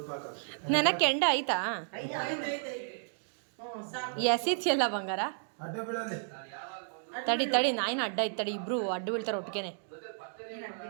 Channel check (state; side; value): silent; left; digital silence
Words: ಹಾಕ. ನನ್ನ ಕೆಂಡ ಆಯ್ತಾ? ಎಸಿತಿಯಲ್ಲ ಬಂಗಾರ. ಅಡ್ಡ ಬೀಳಲಿ. ತಡಿ ತಡಿ, ನಾಯಿನ ಅಡ್ಡ ಐತೆ ತಡಿ, ಇಬ್ರು ಅಡ್ಡ ಬೀಳ್ತಾರೆ ಒಟ್ಟಿಗೆನೆ.